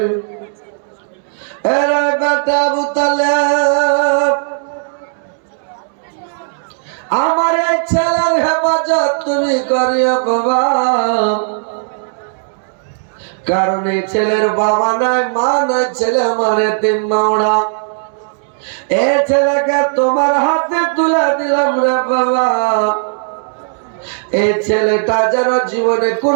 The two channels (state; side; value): silent; left; digital silence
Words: এরে বেটা আবু তালেব, আমার এই ছেলের হেফাজত তুমি করিও বাবা, কারণ এই ছেলের বাবা নাই, মা নাই, ছেলে আমার এতিম মাওড়া। এই ছেলেকে তোমার হাতে তুলে দিলাম রে বাবা। এই ছেলেটা যেন জীবনে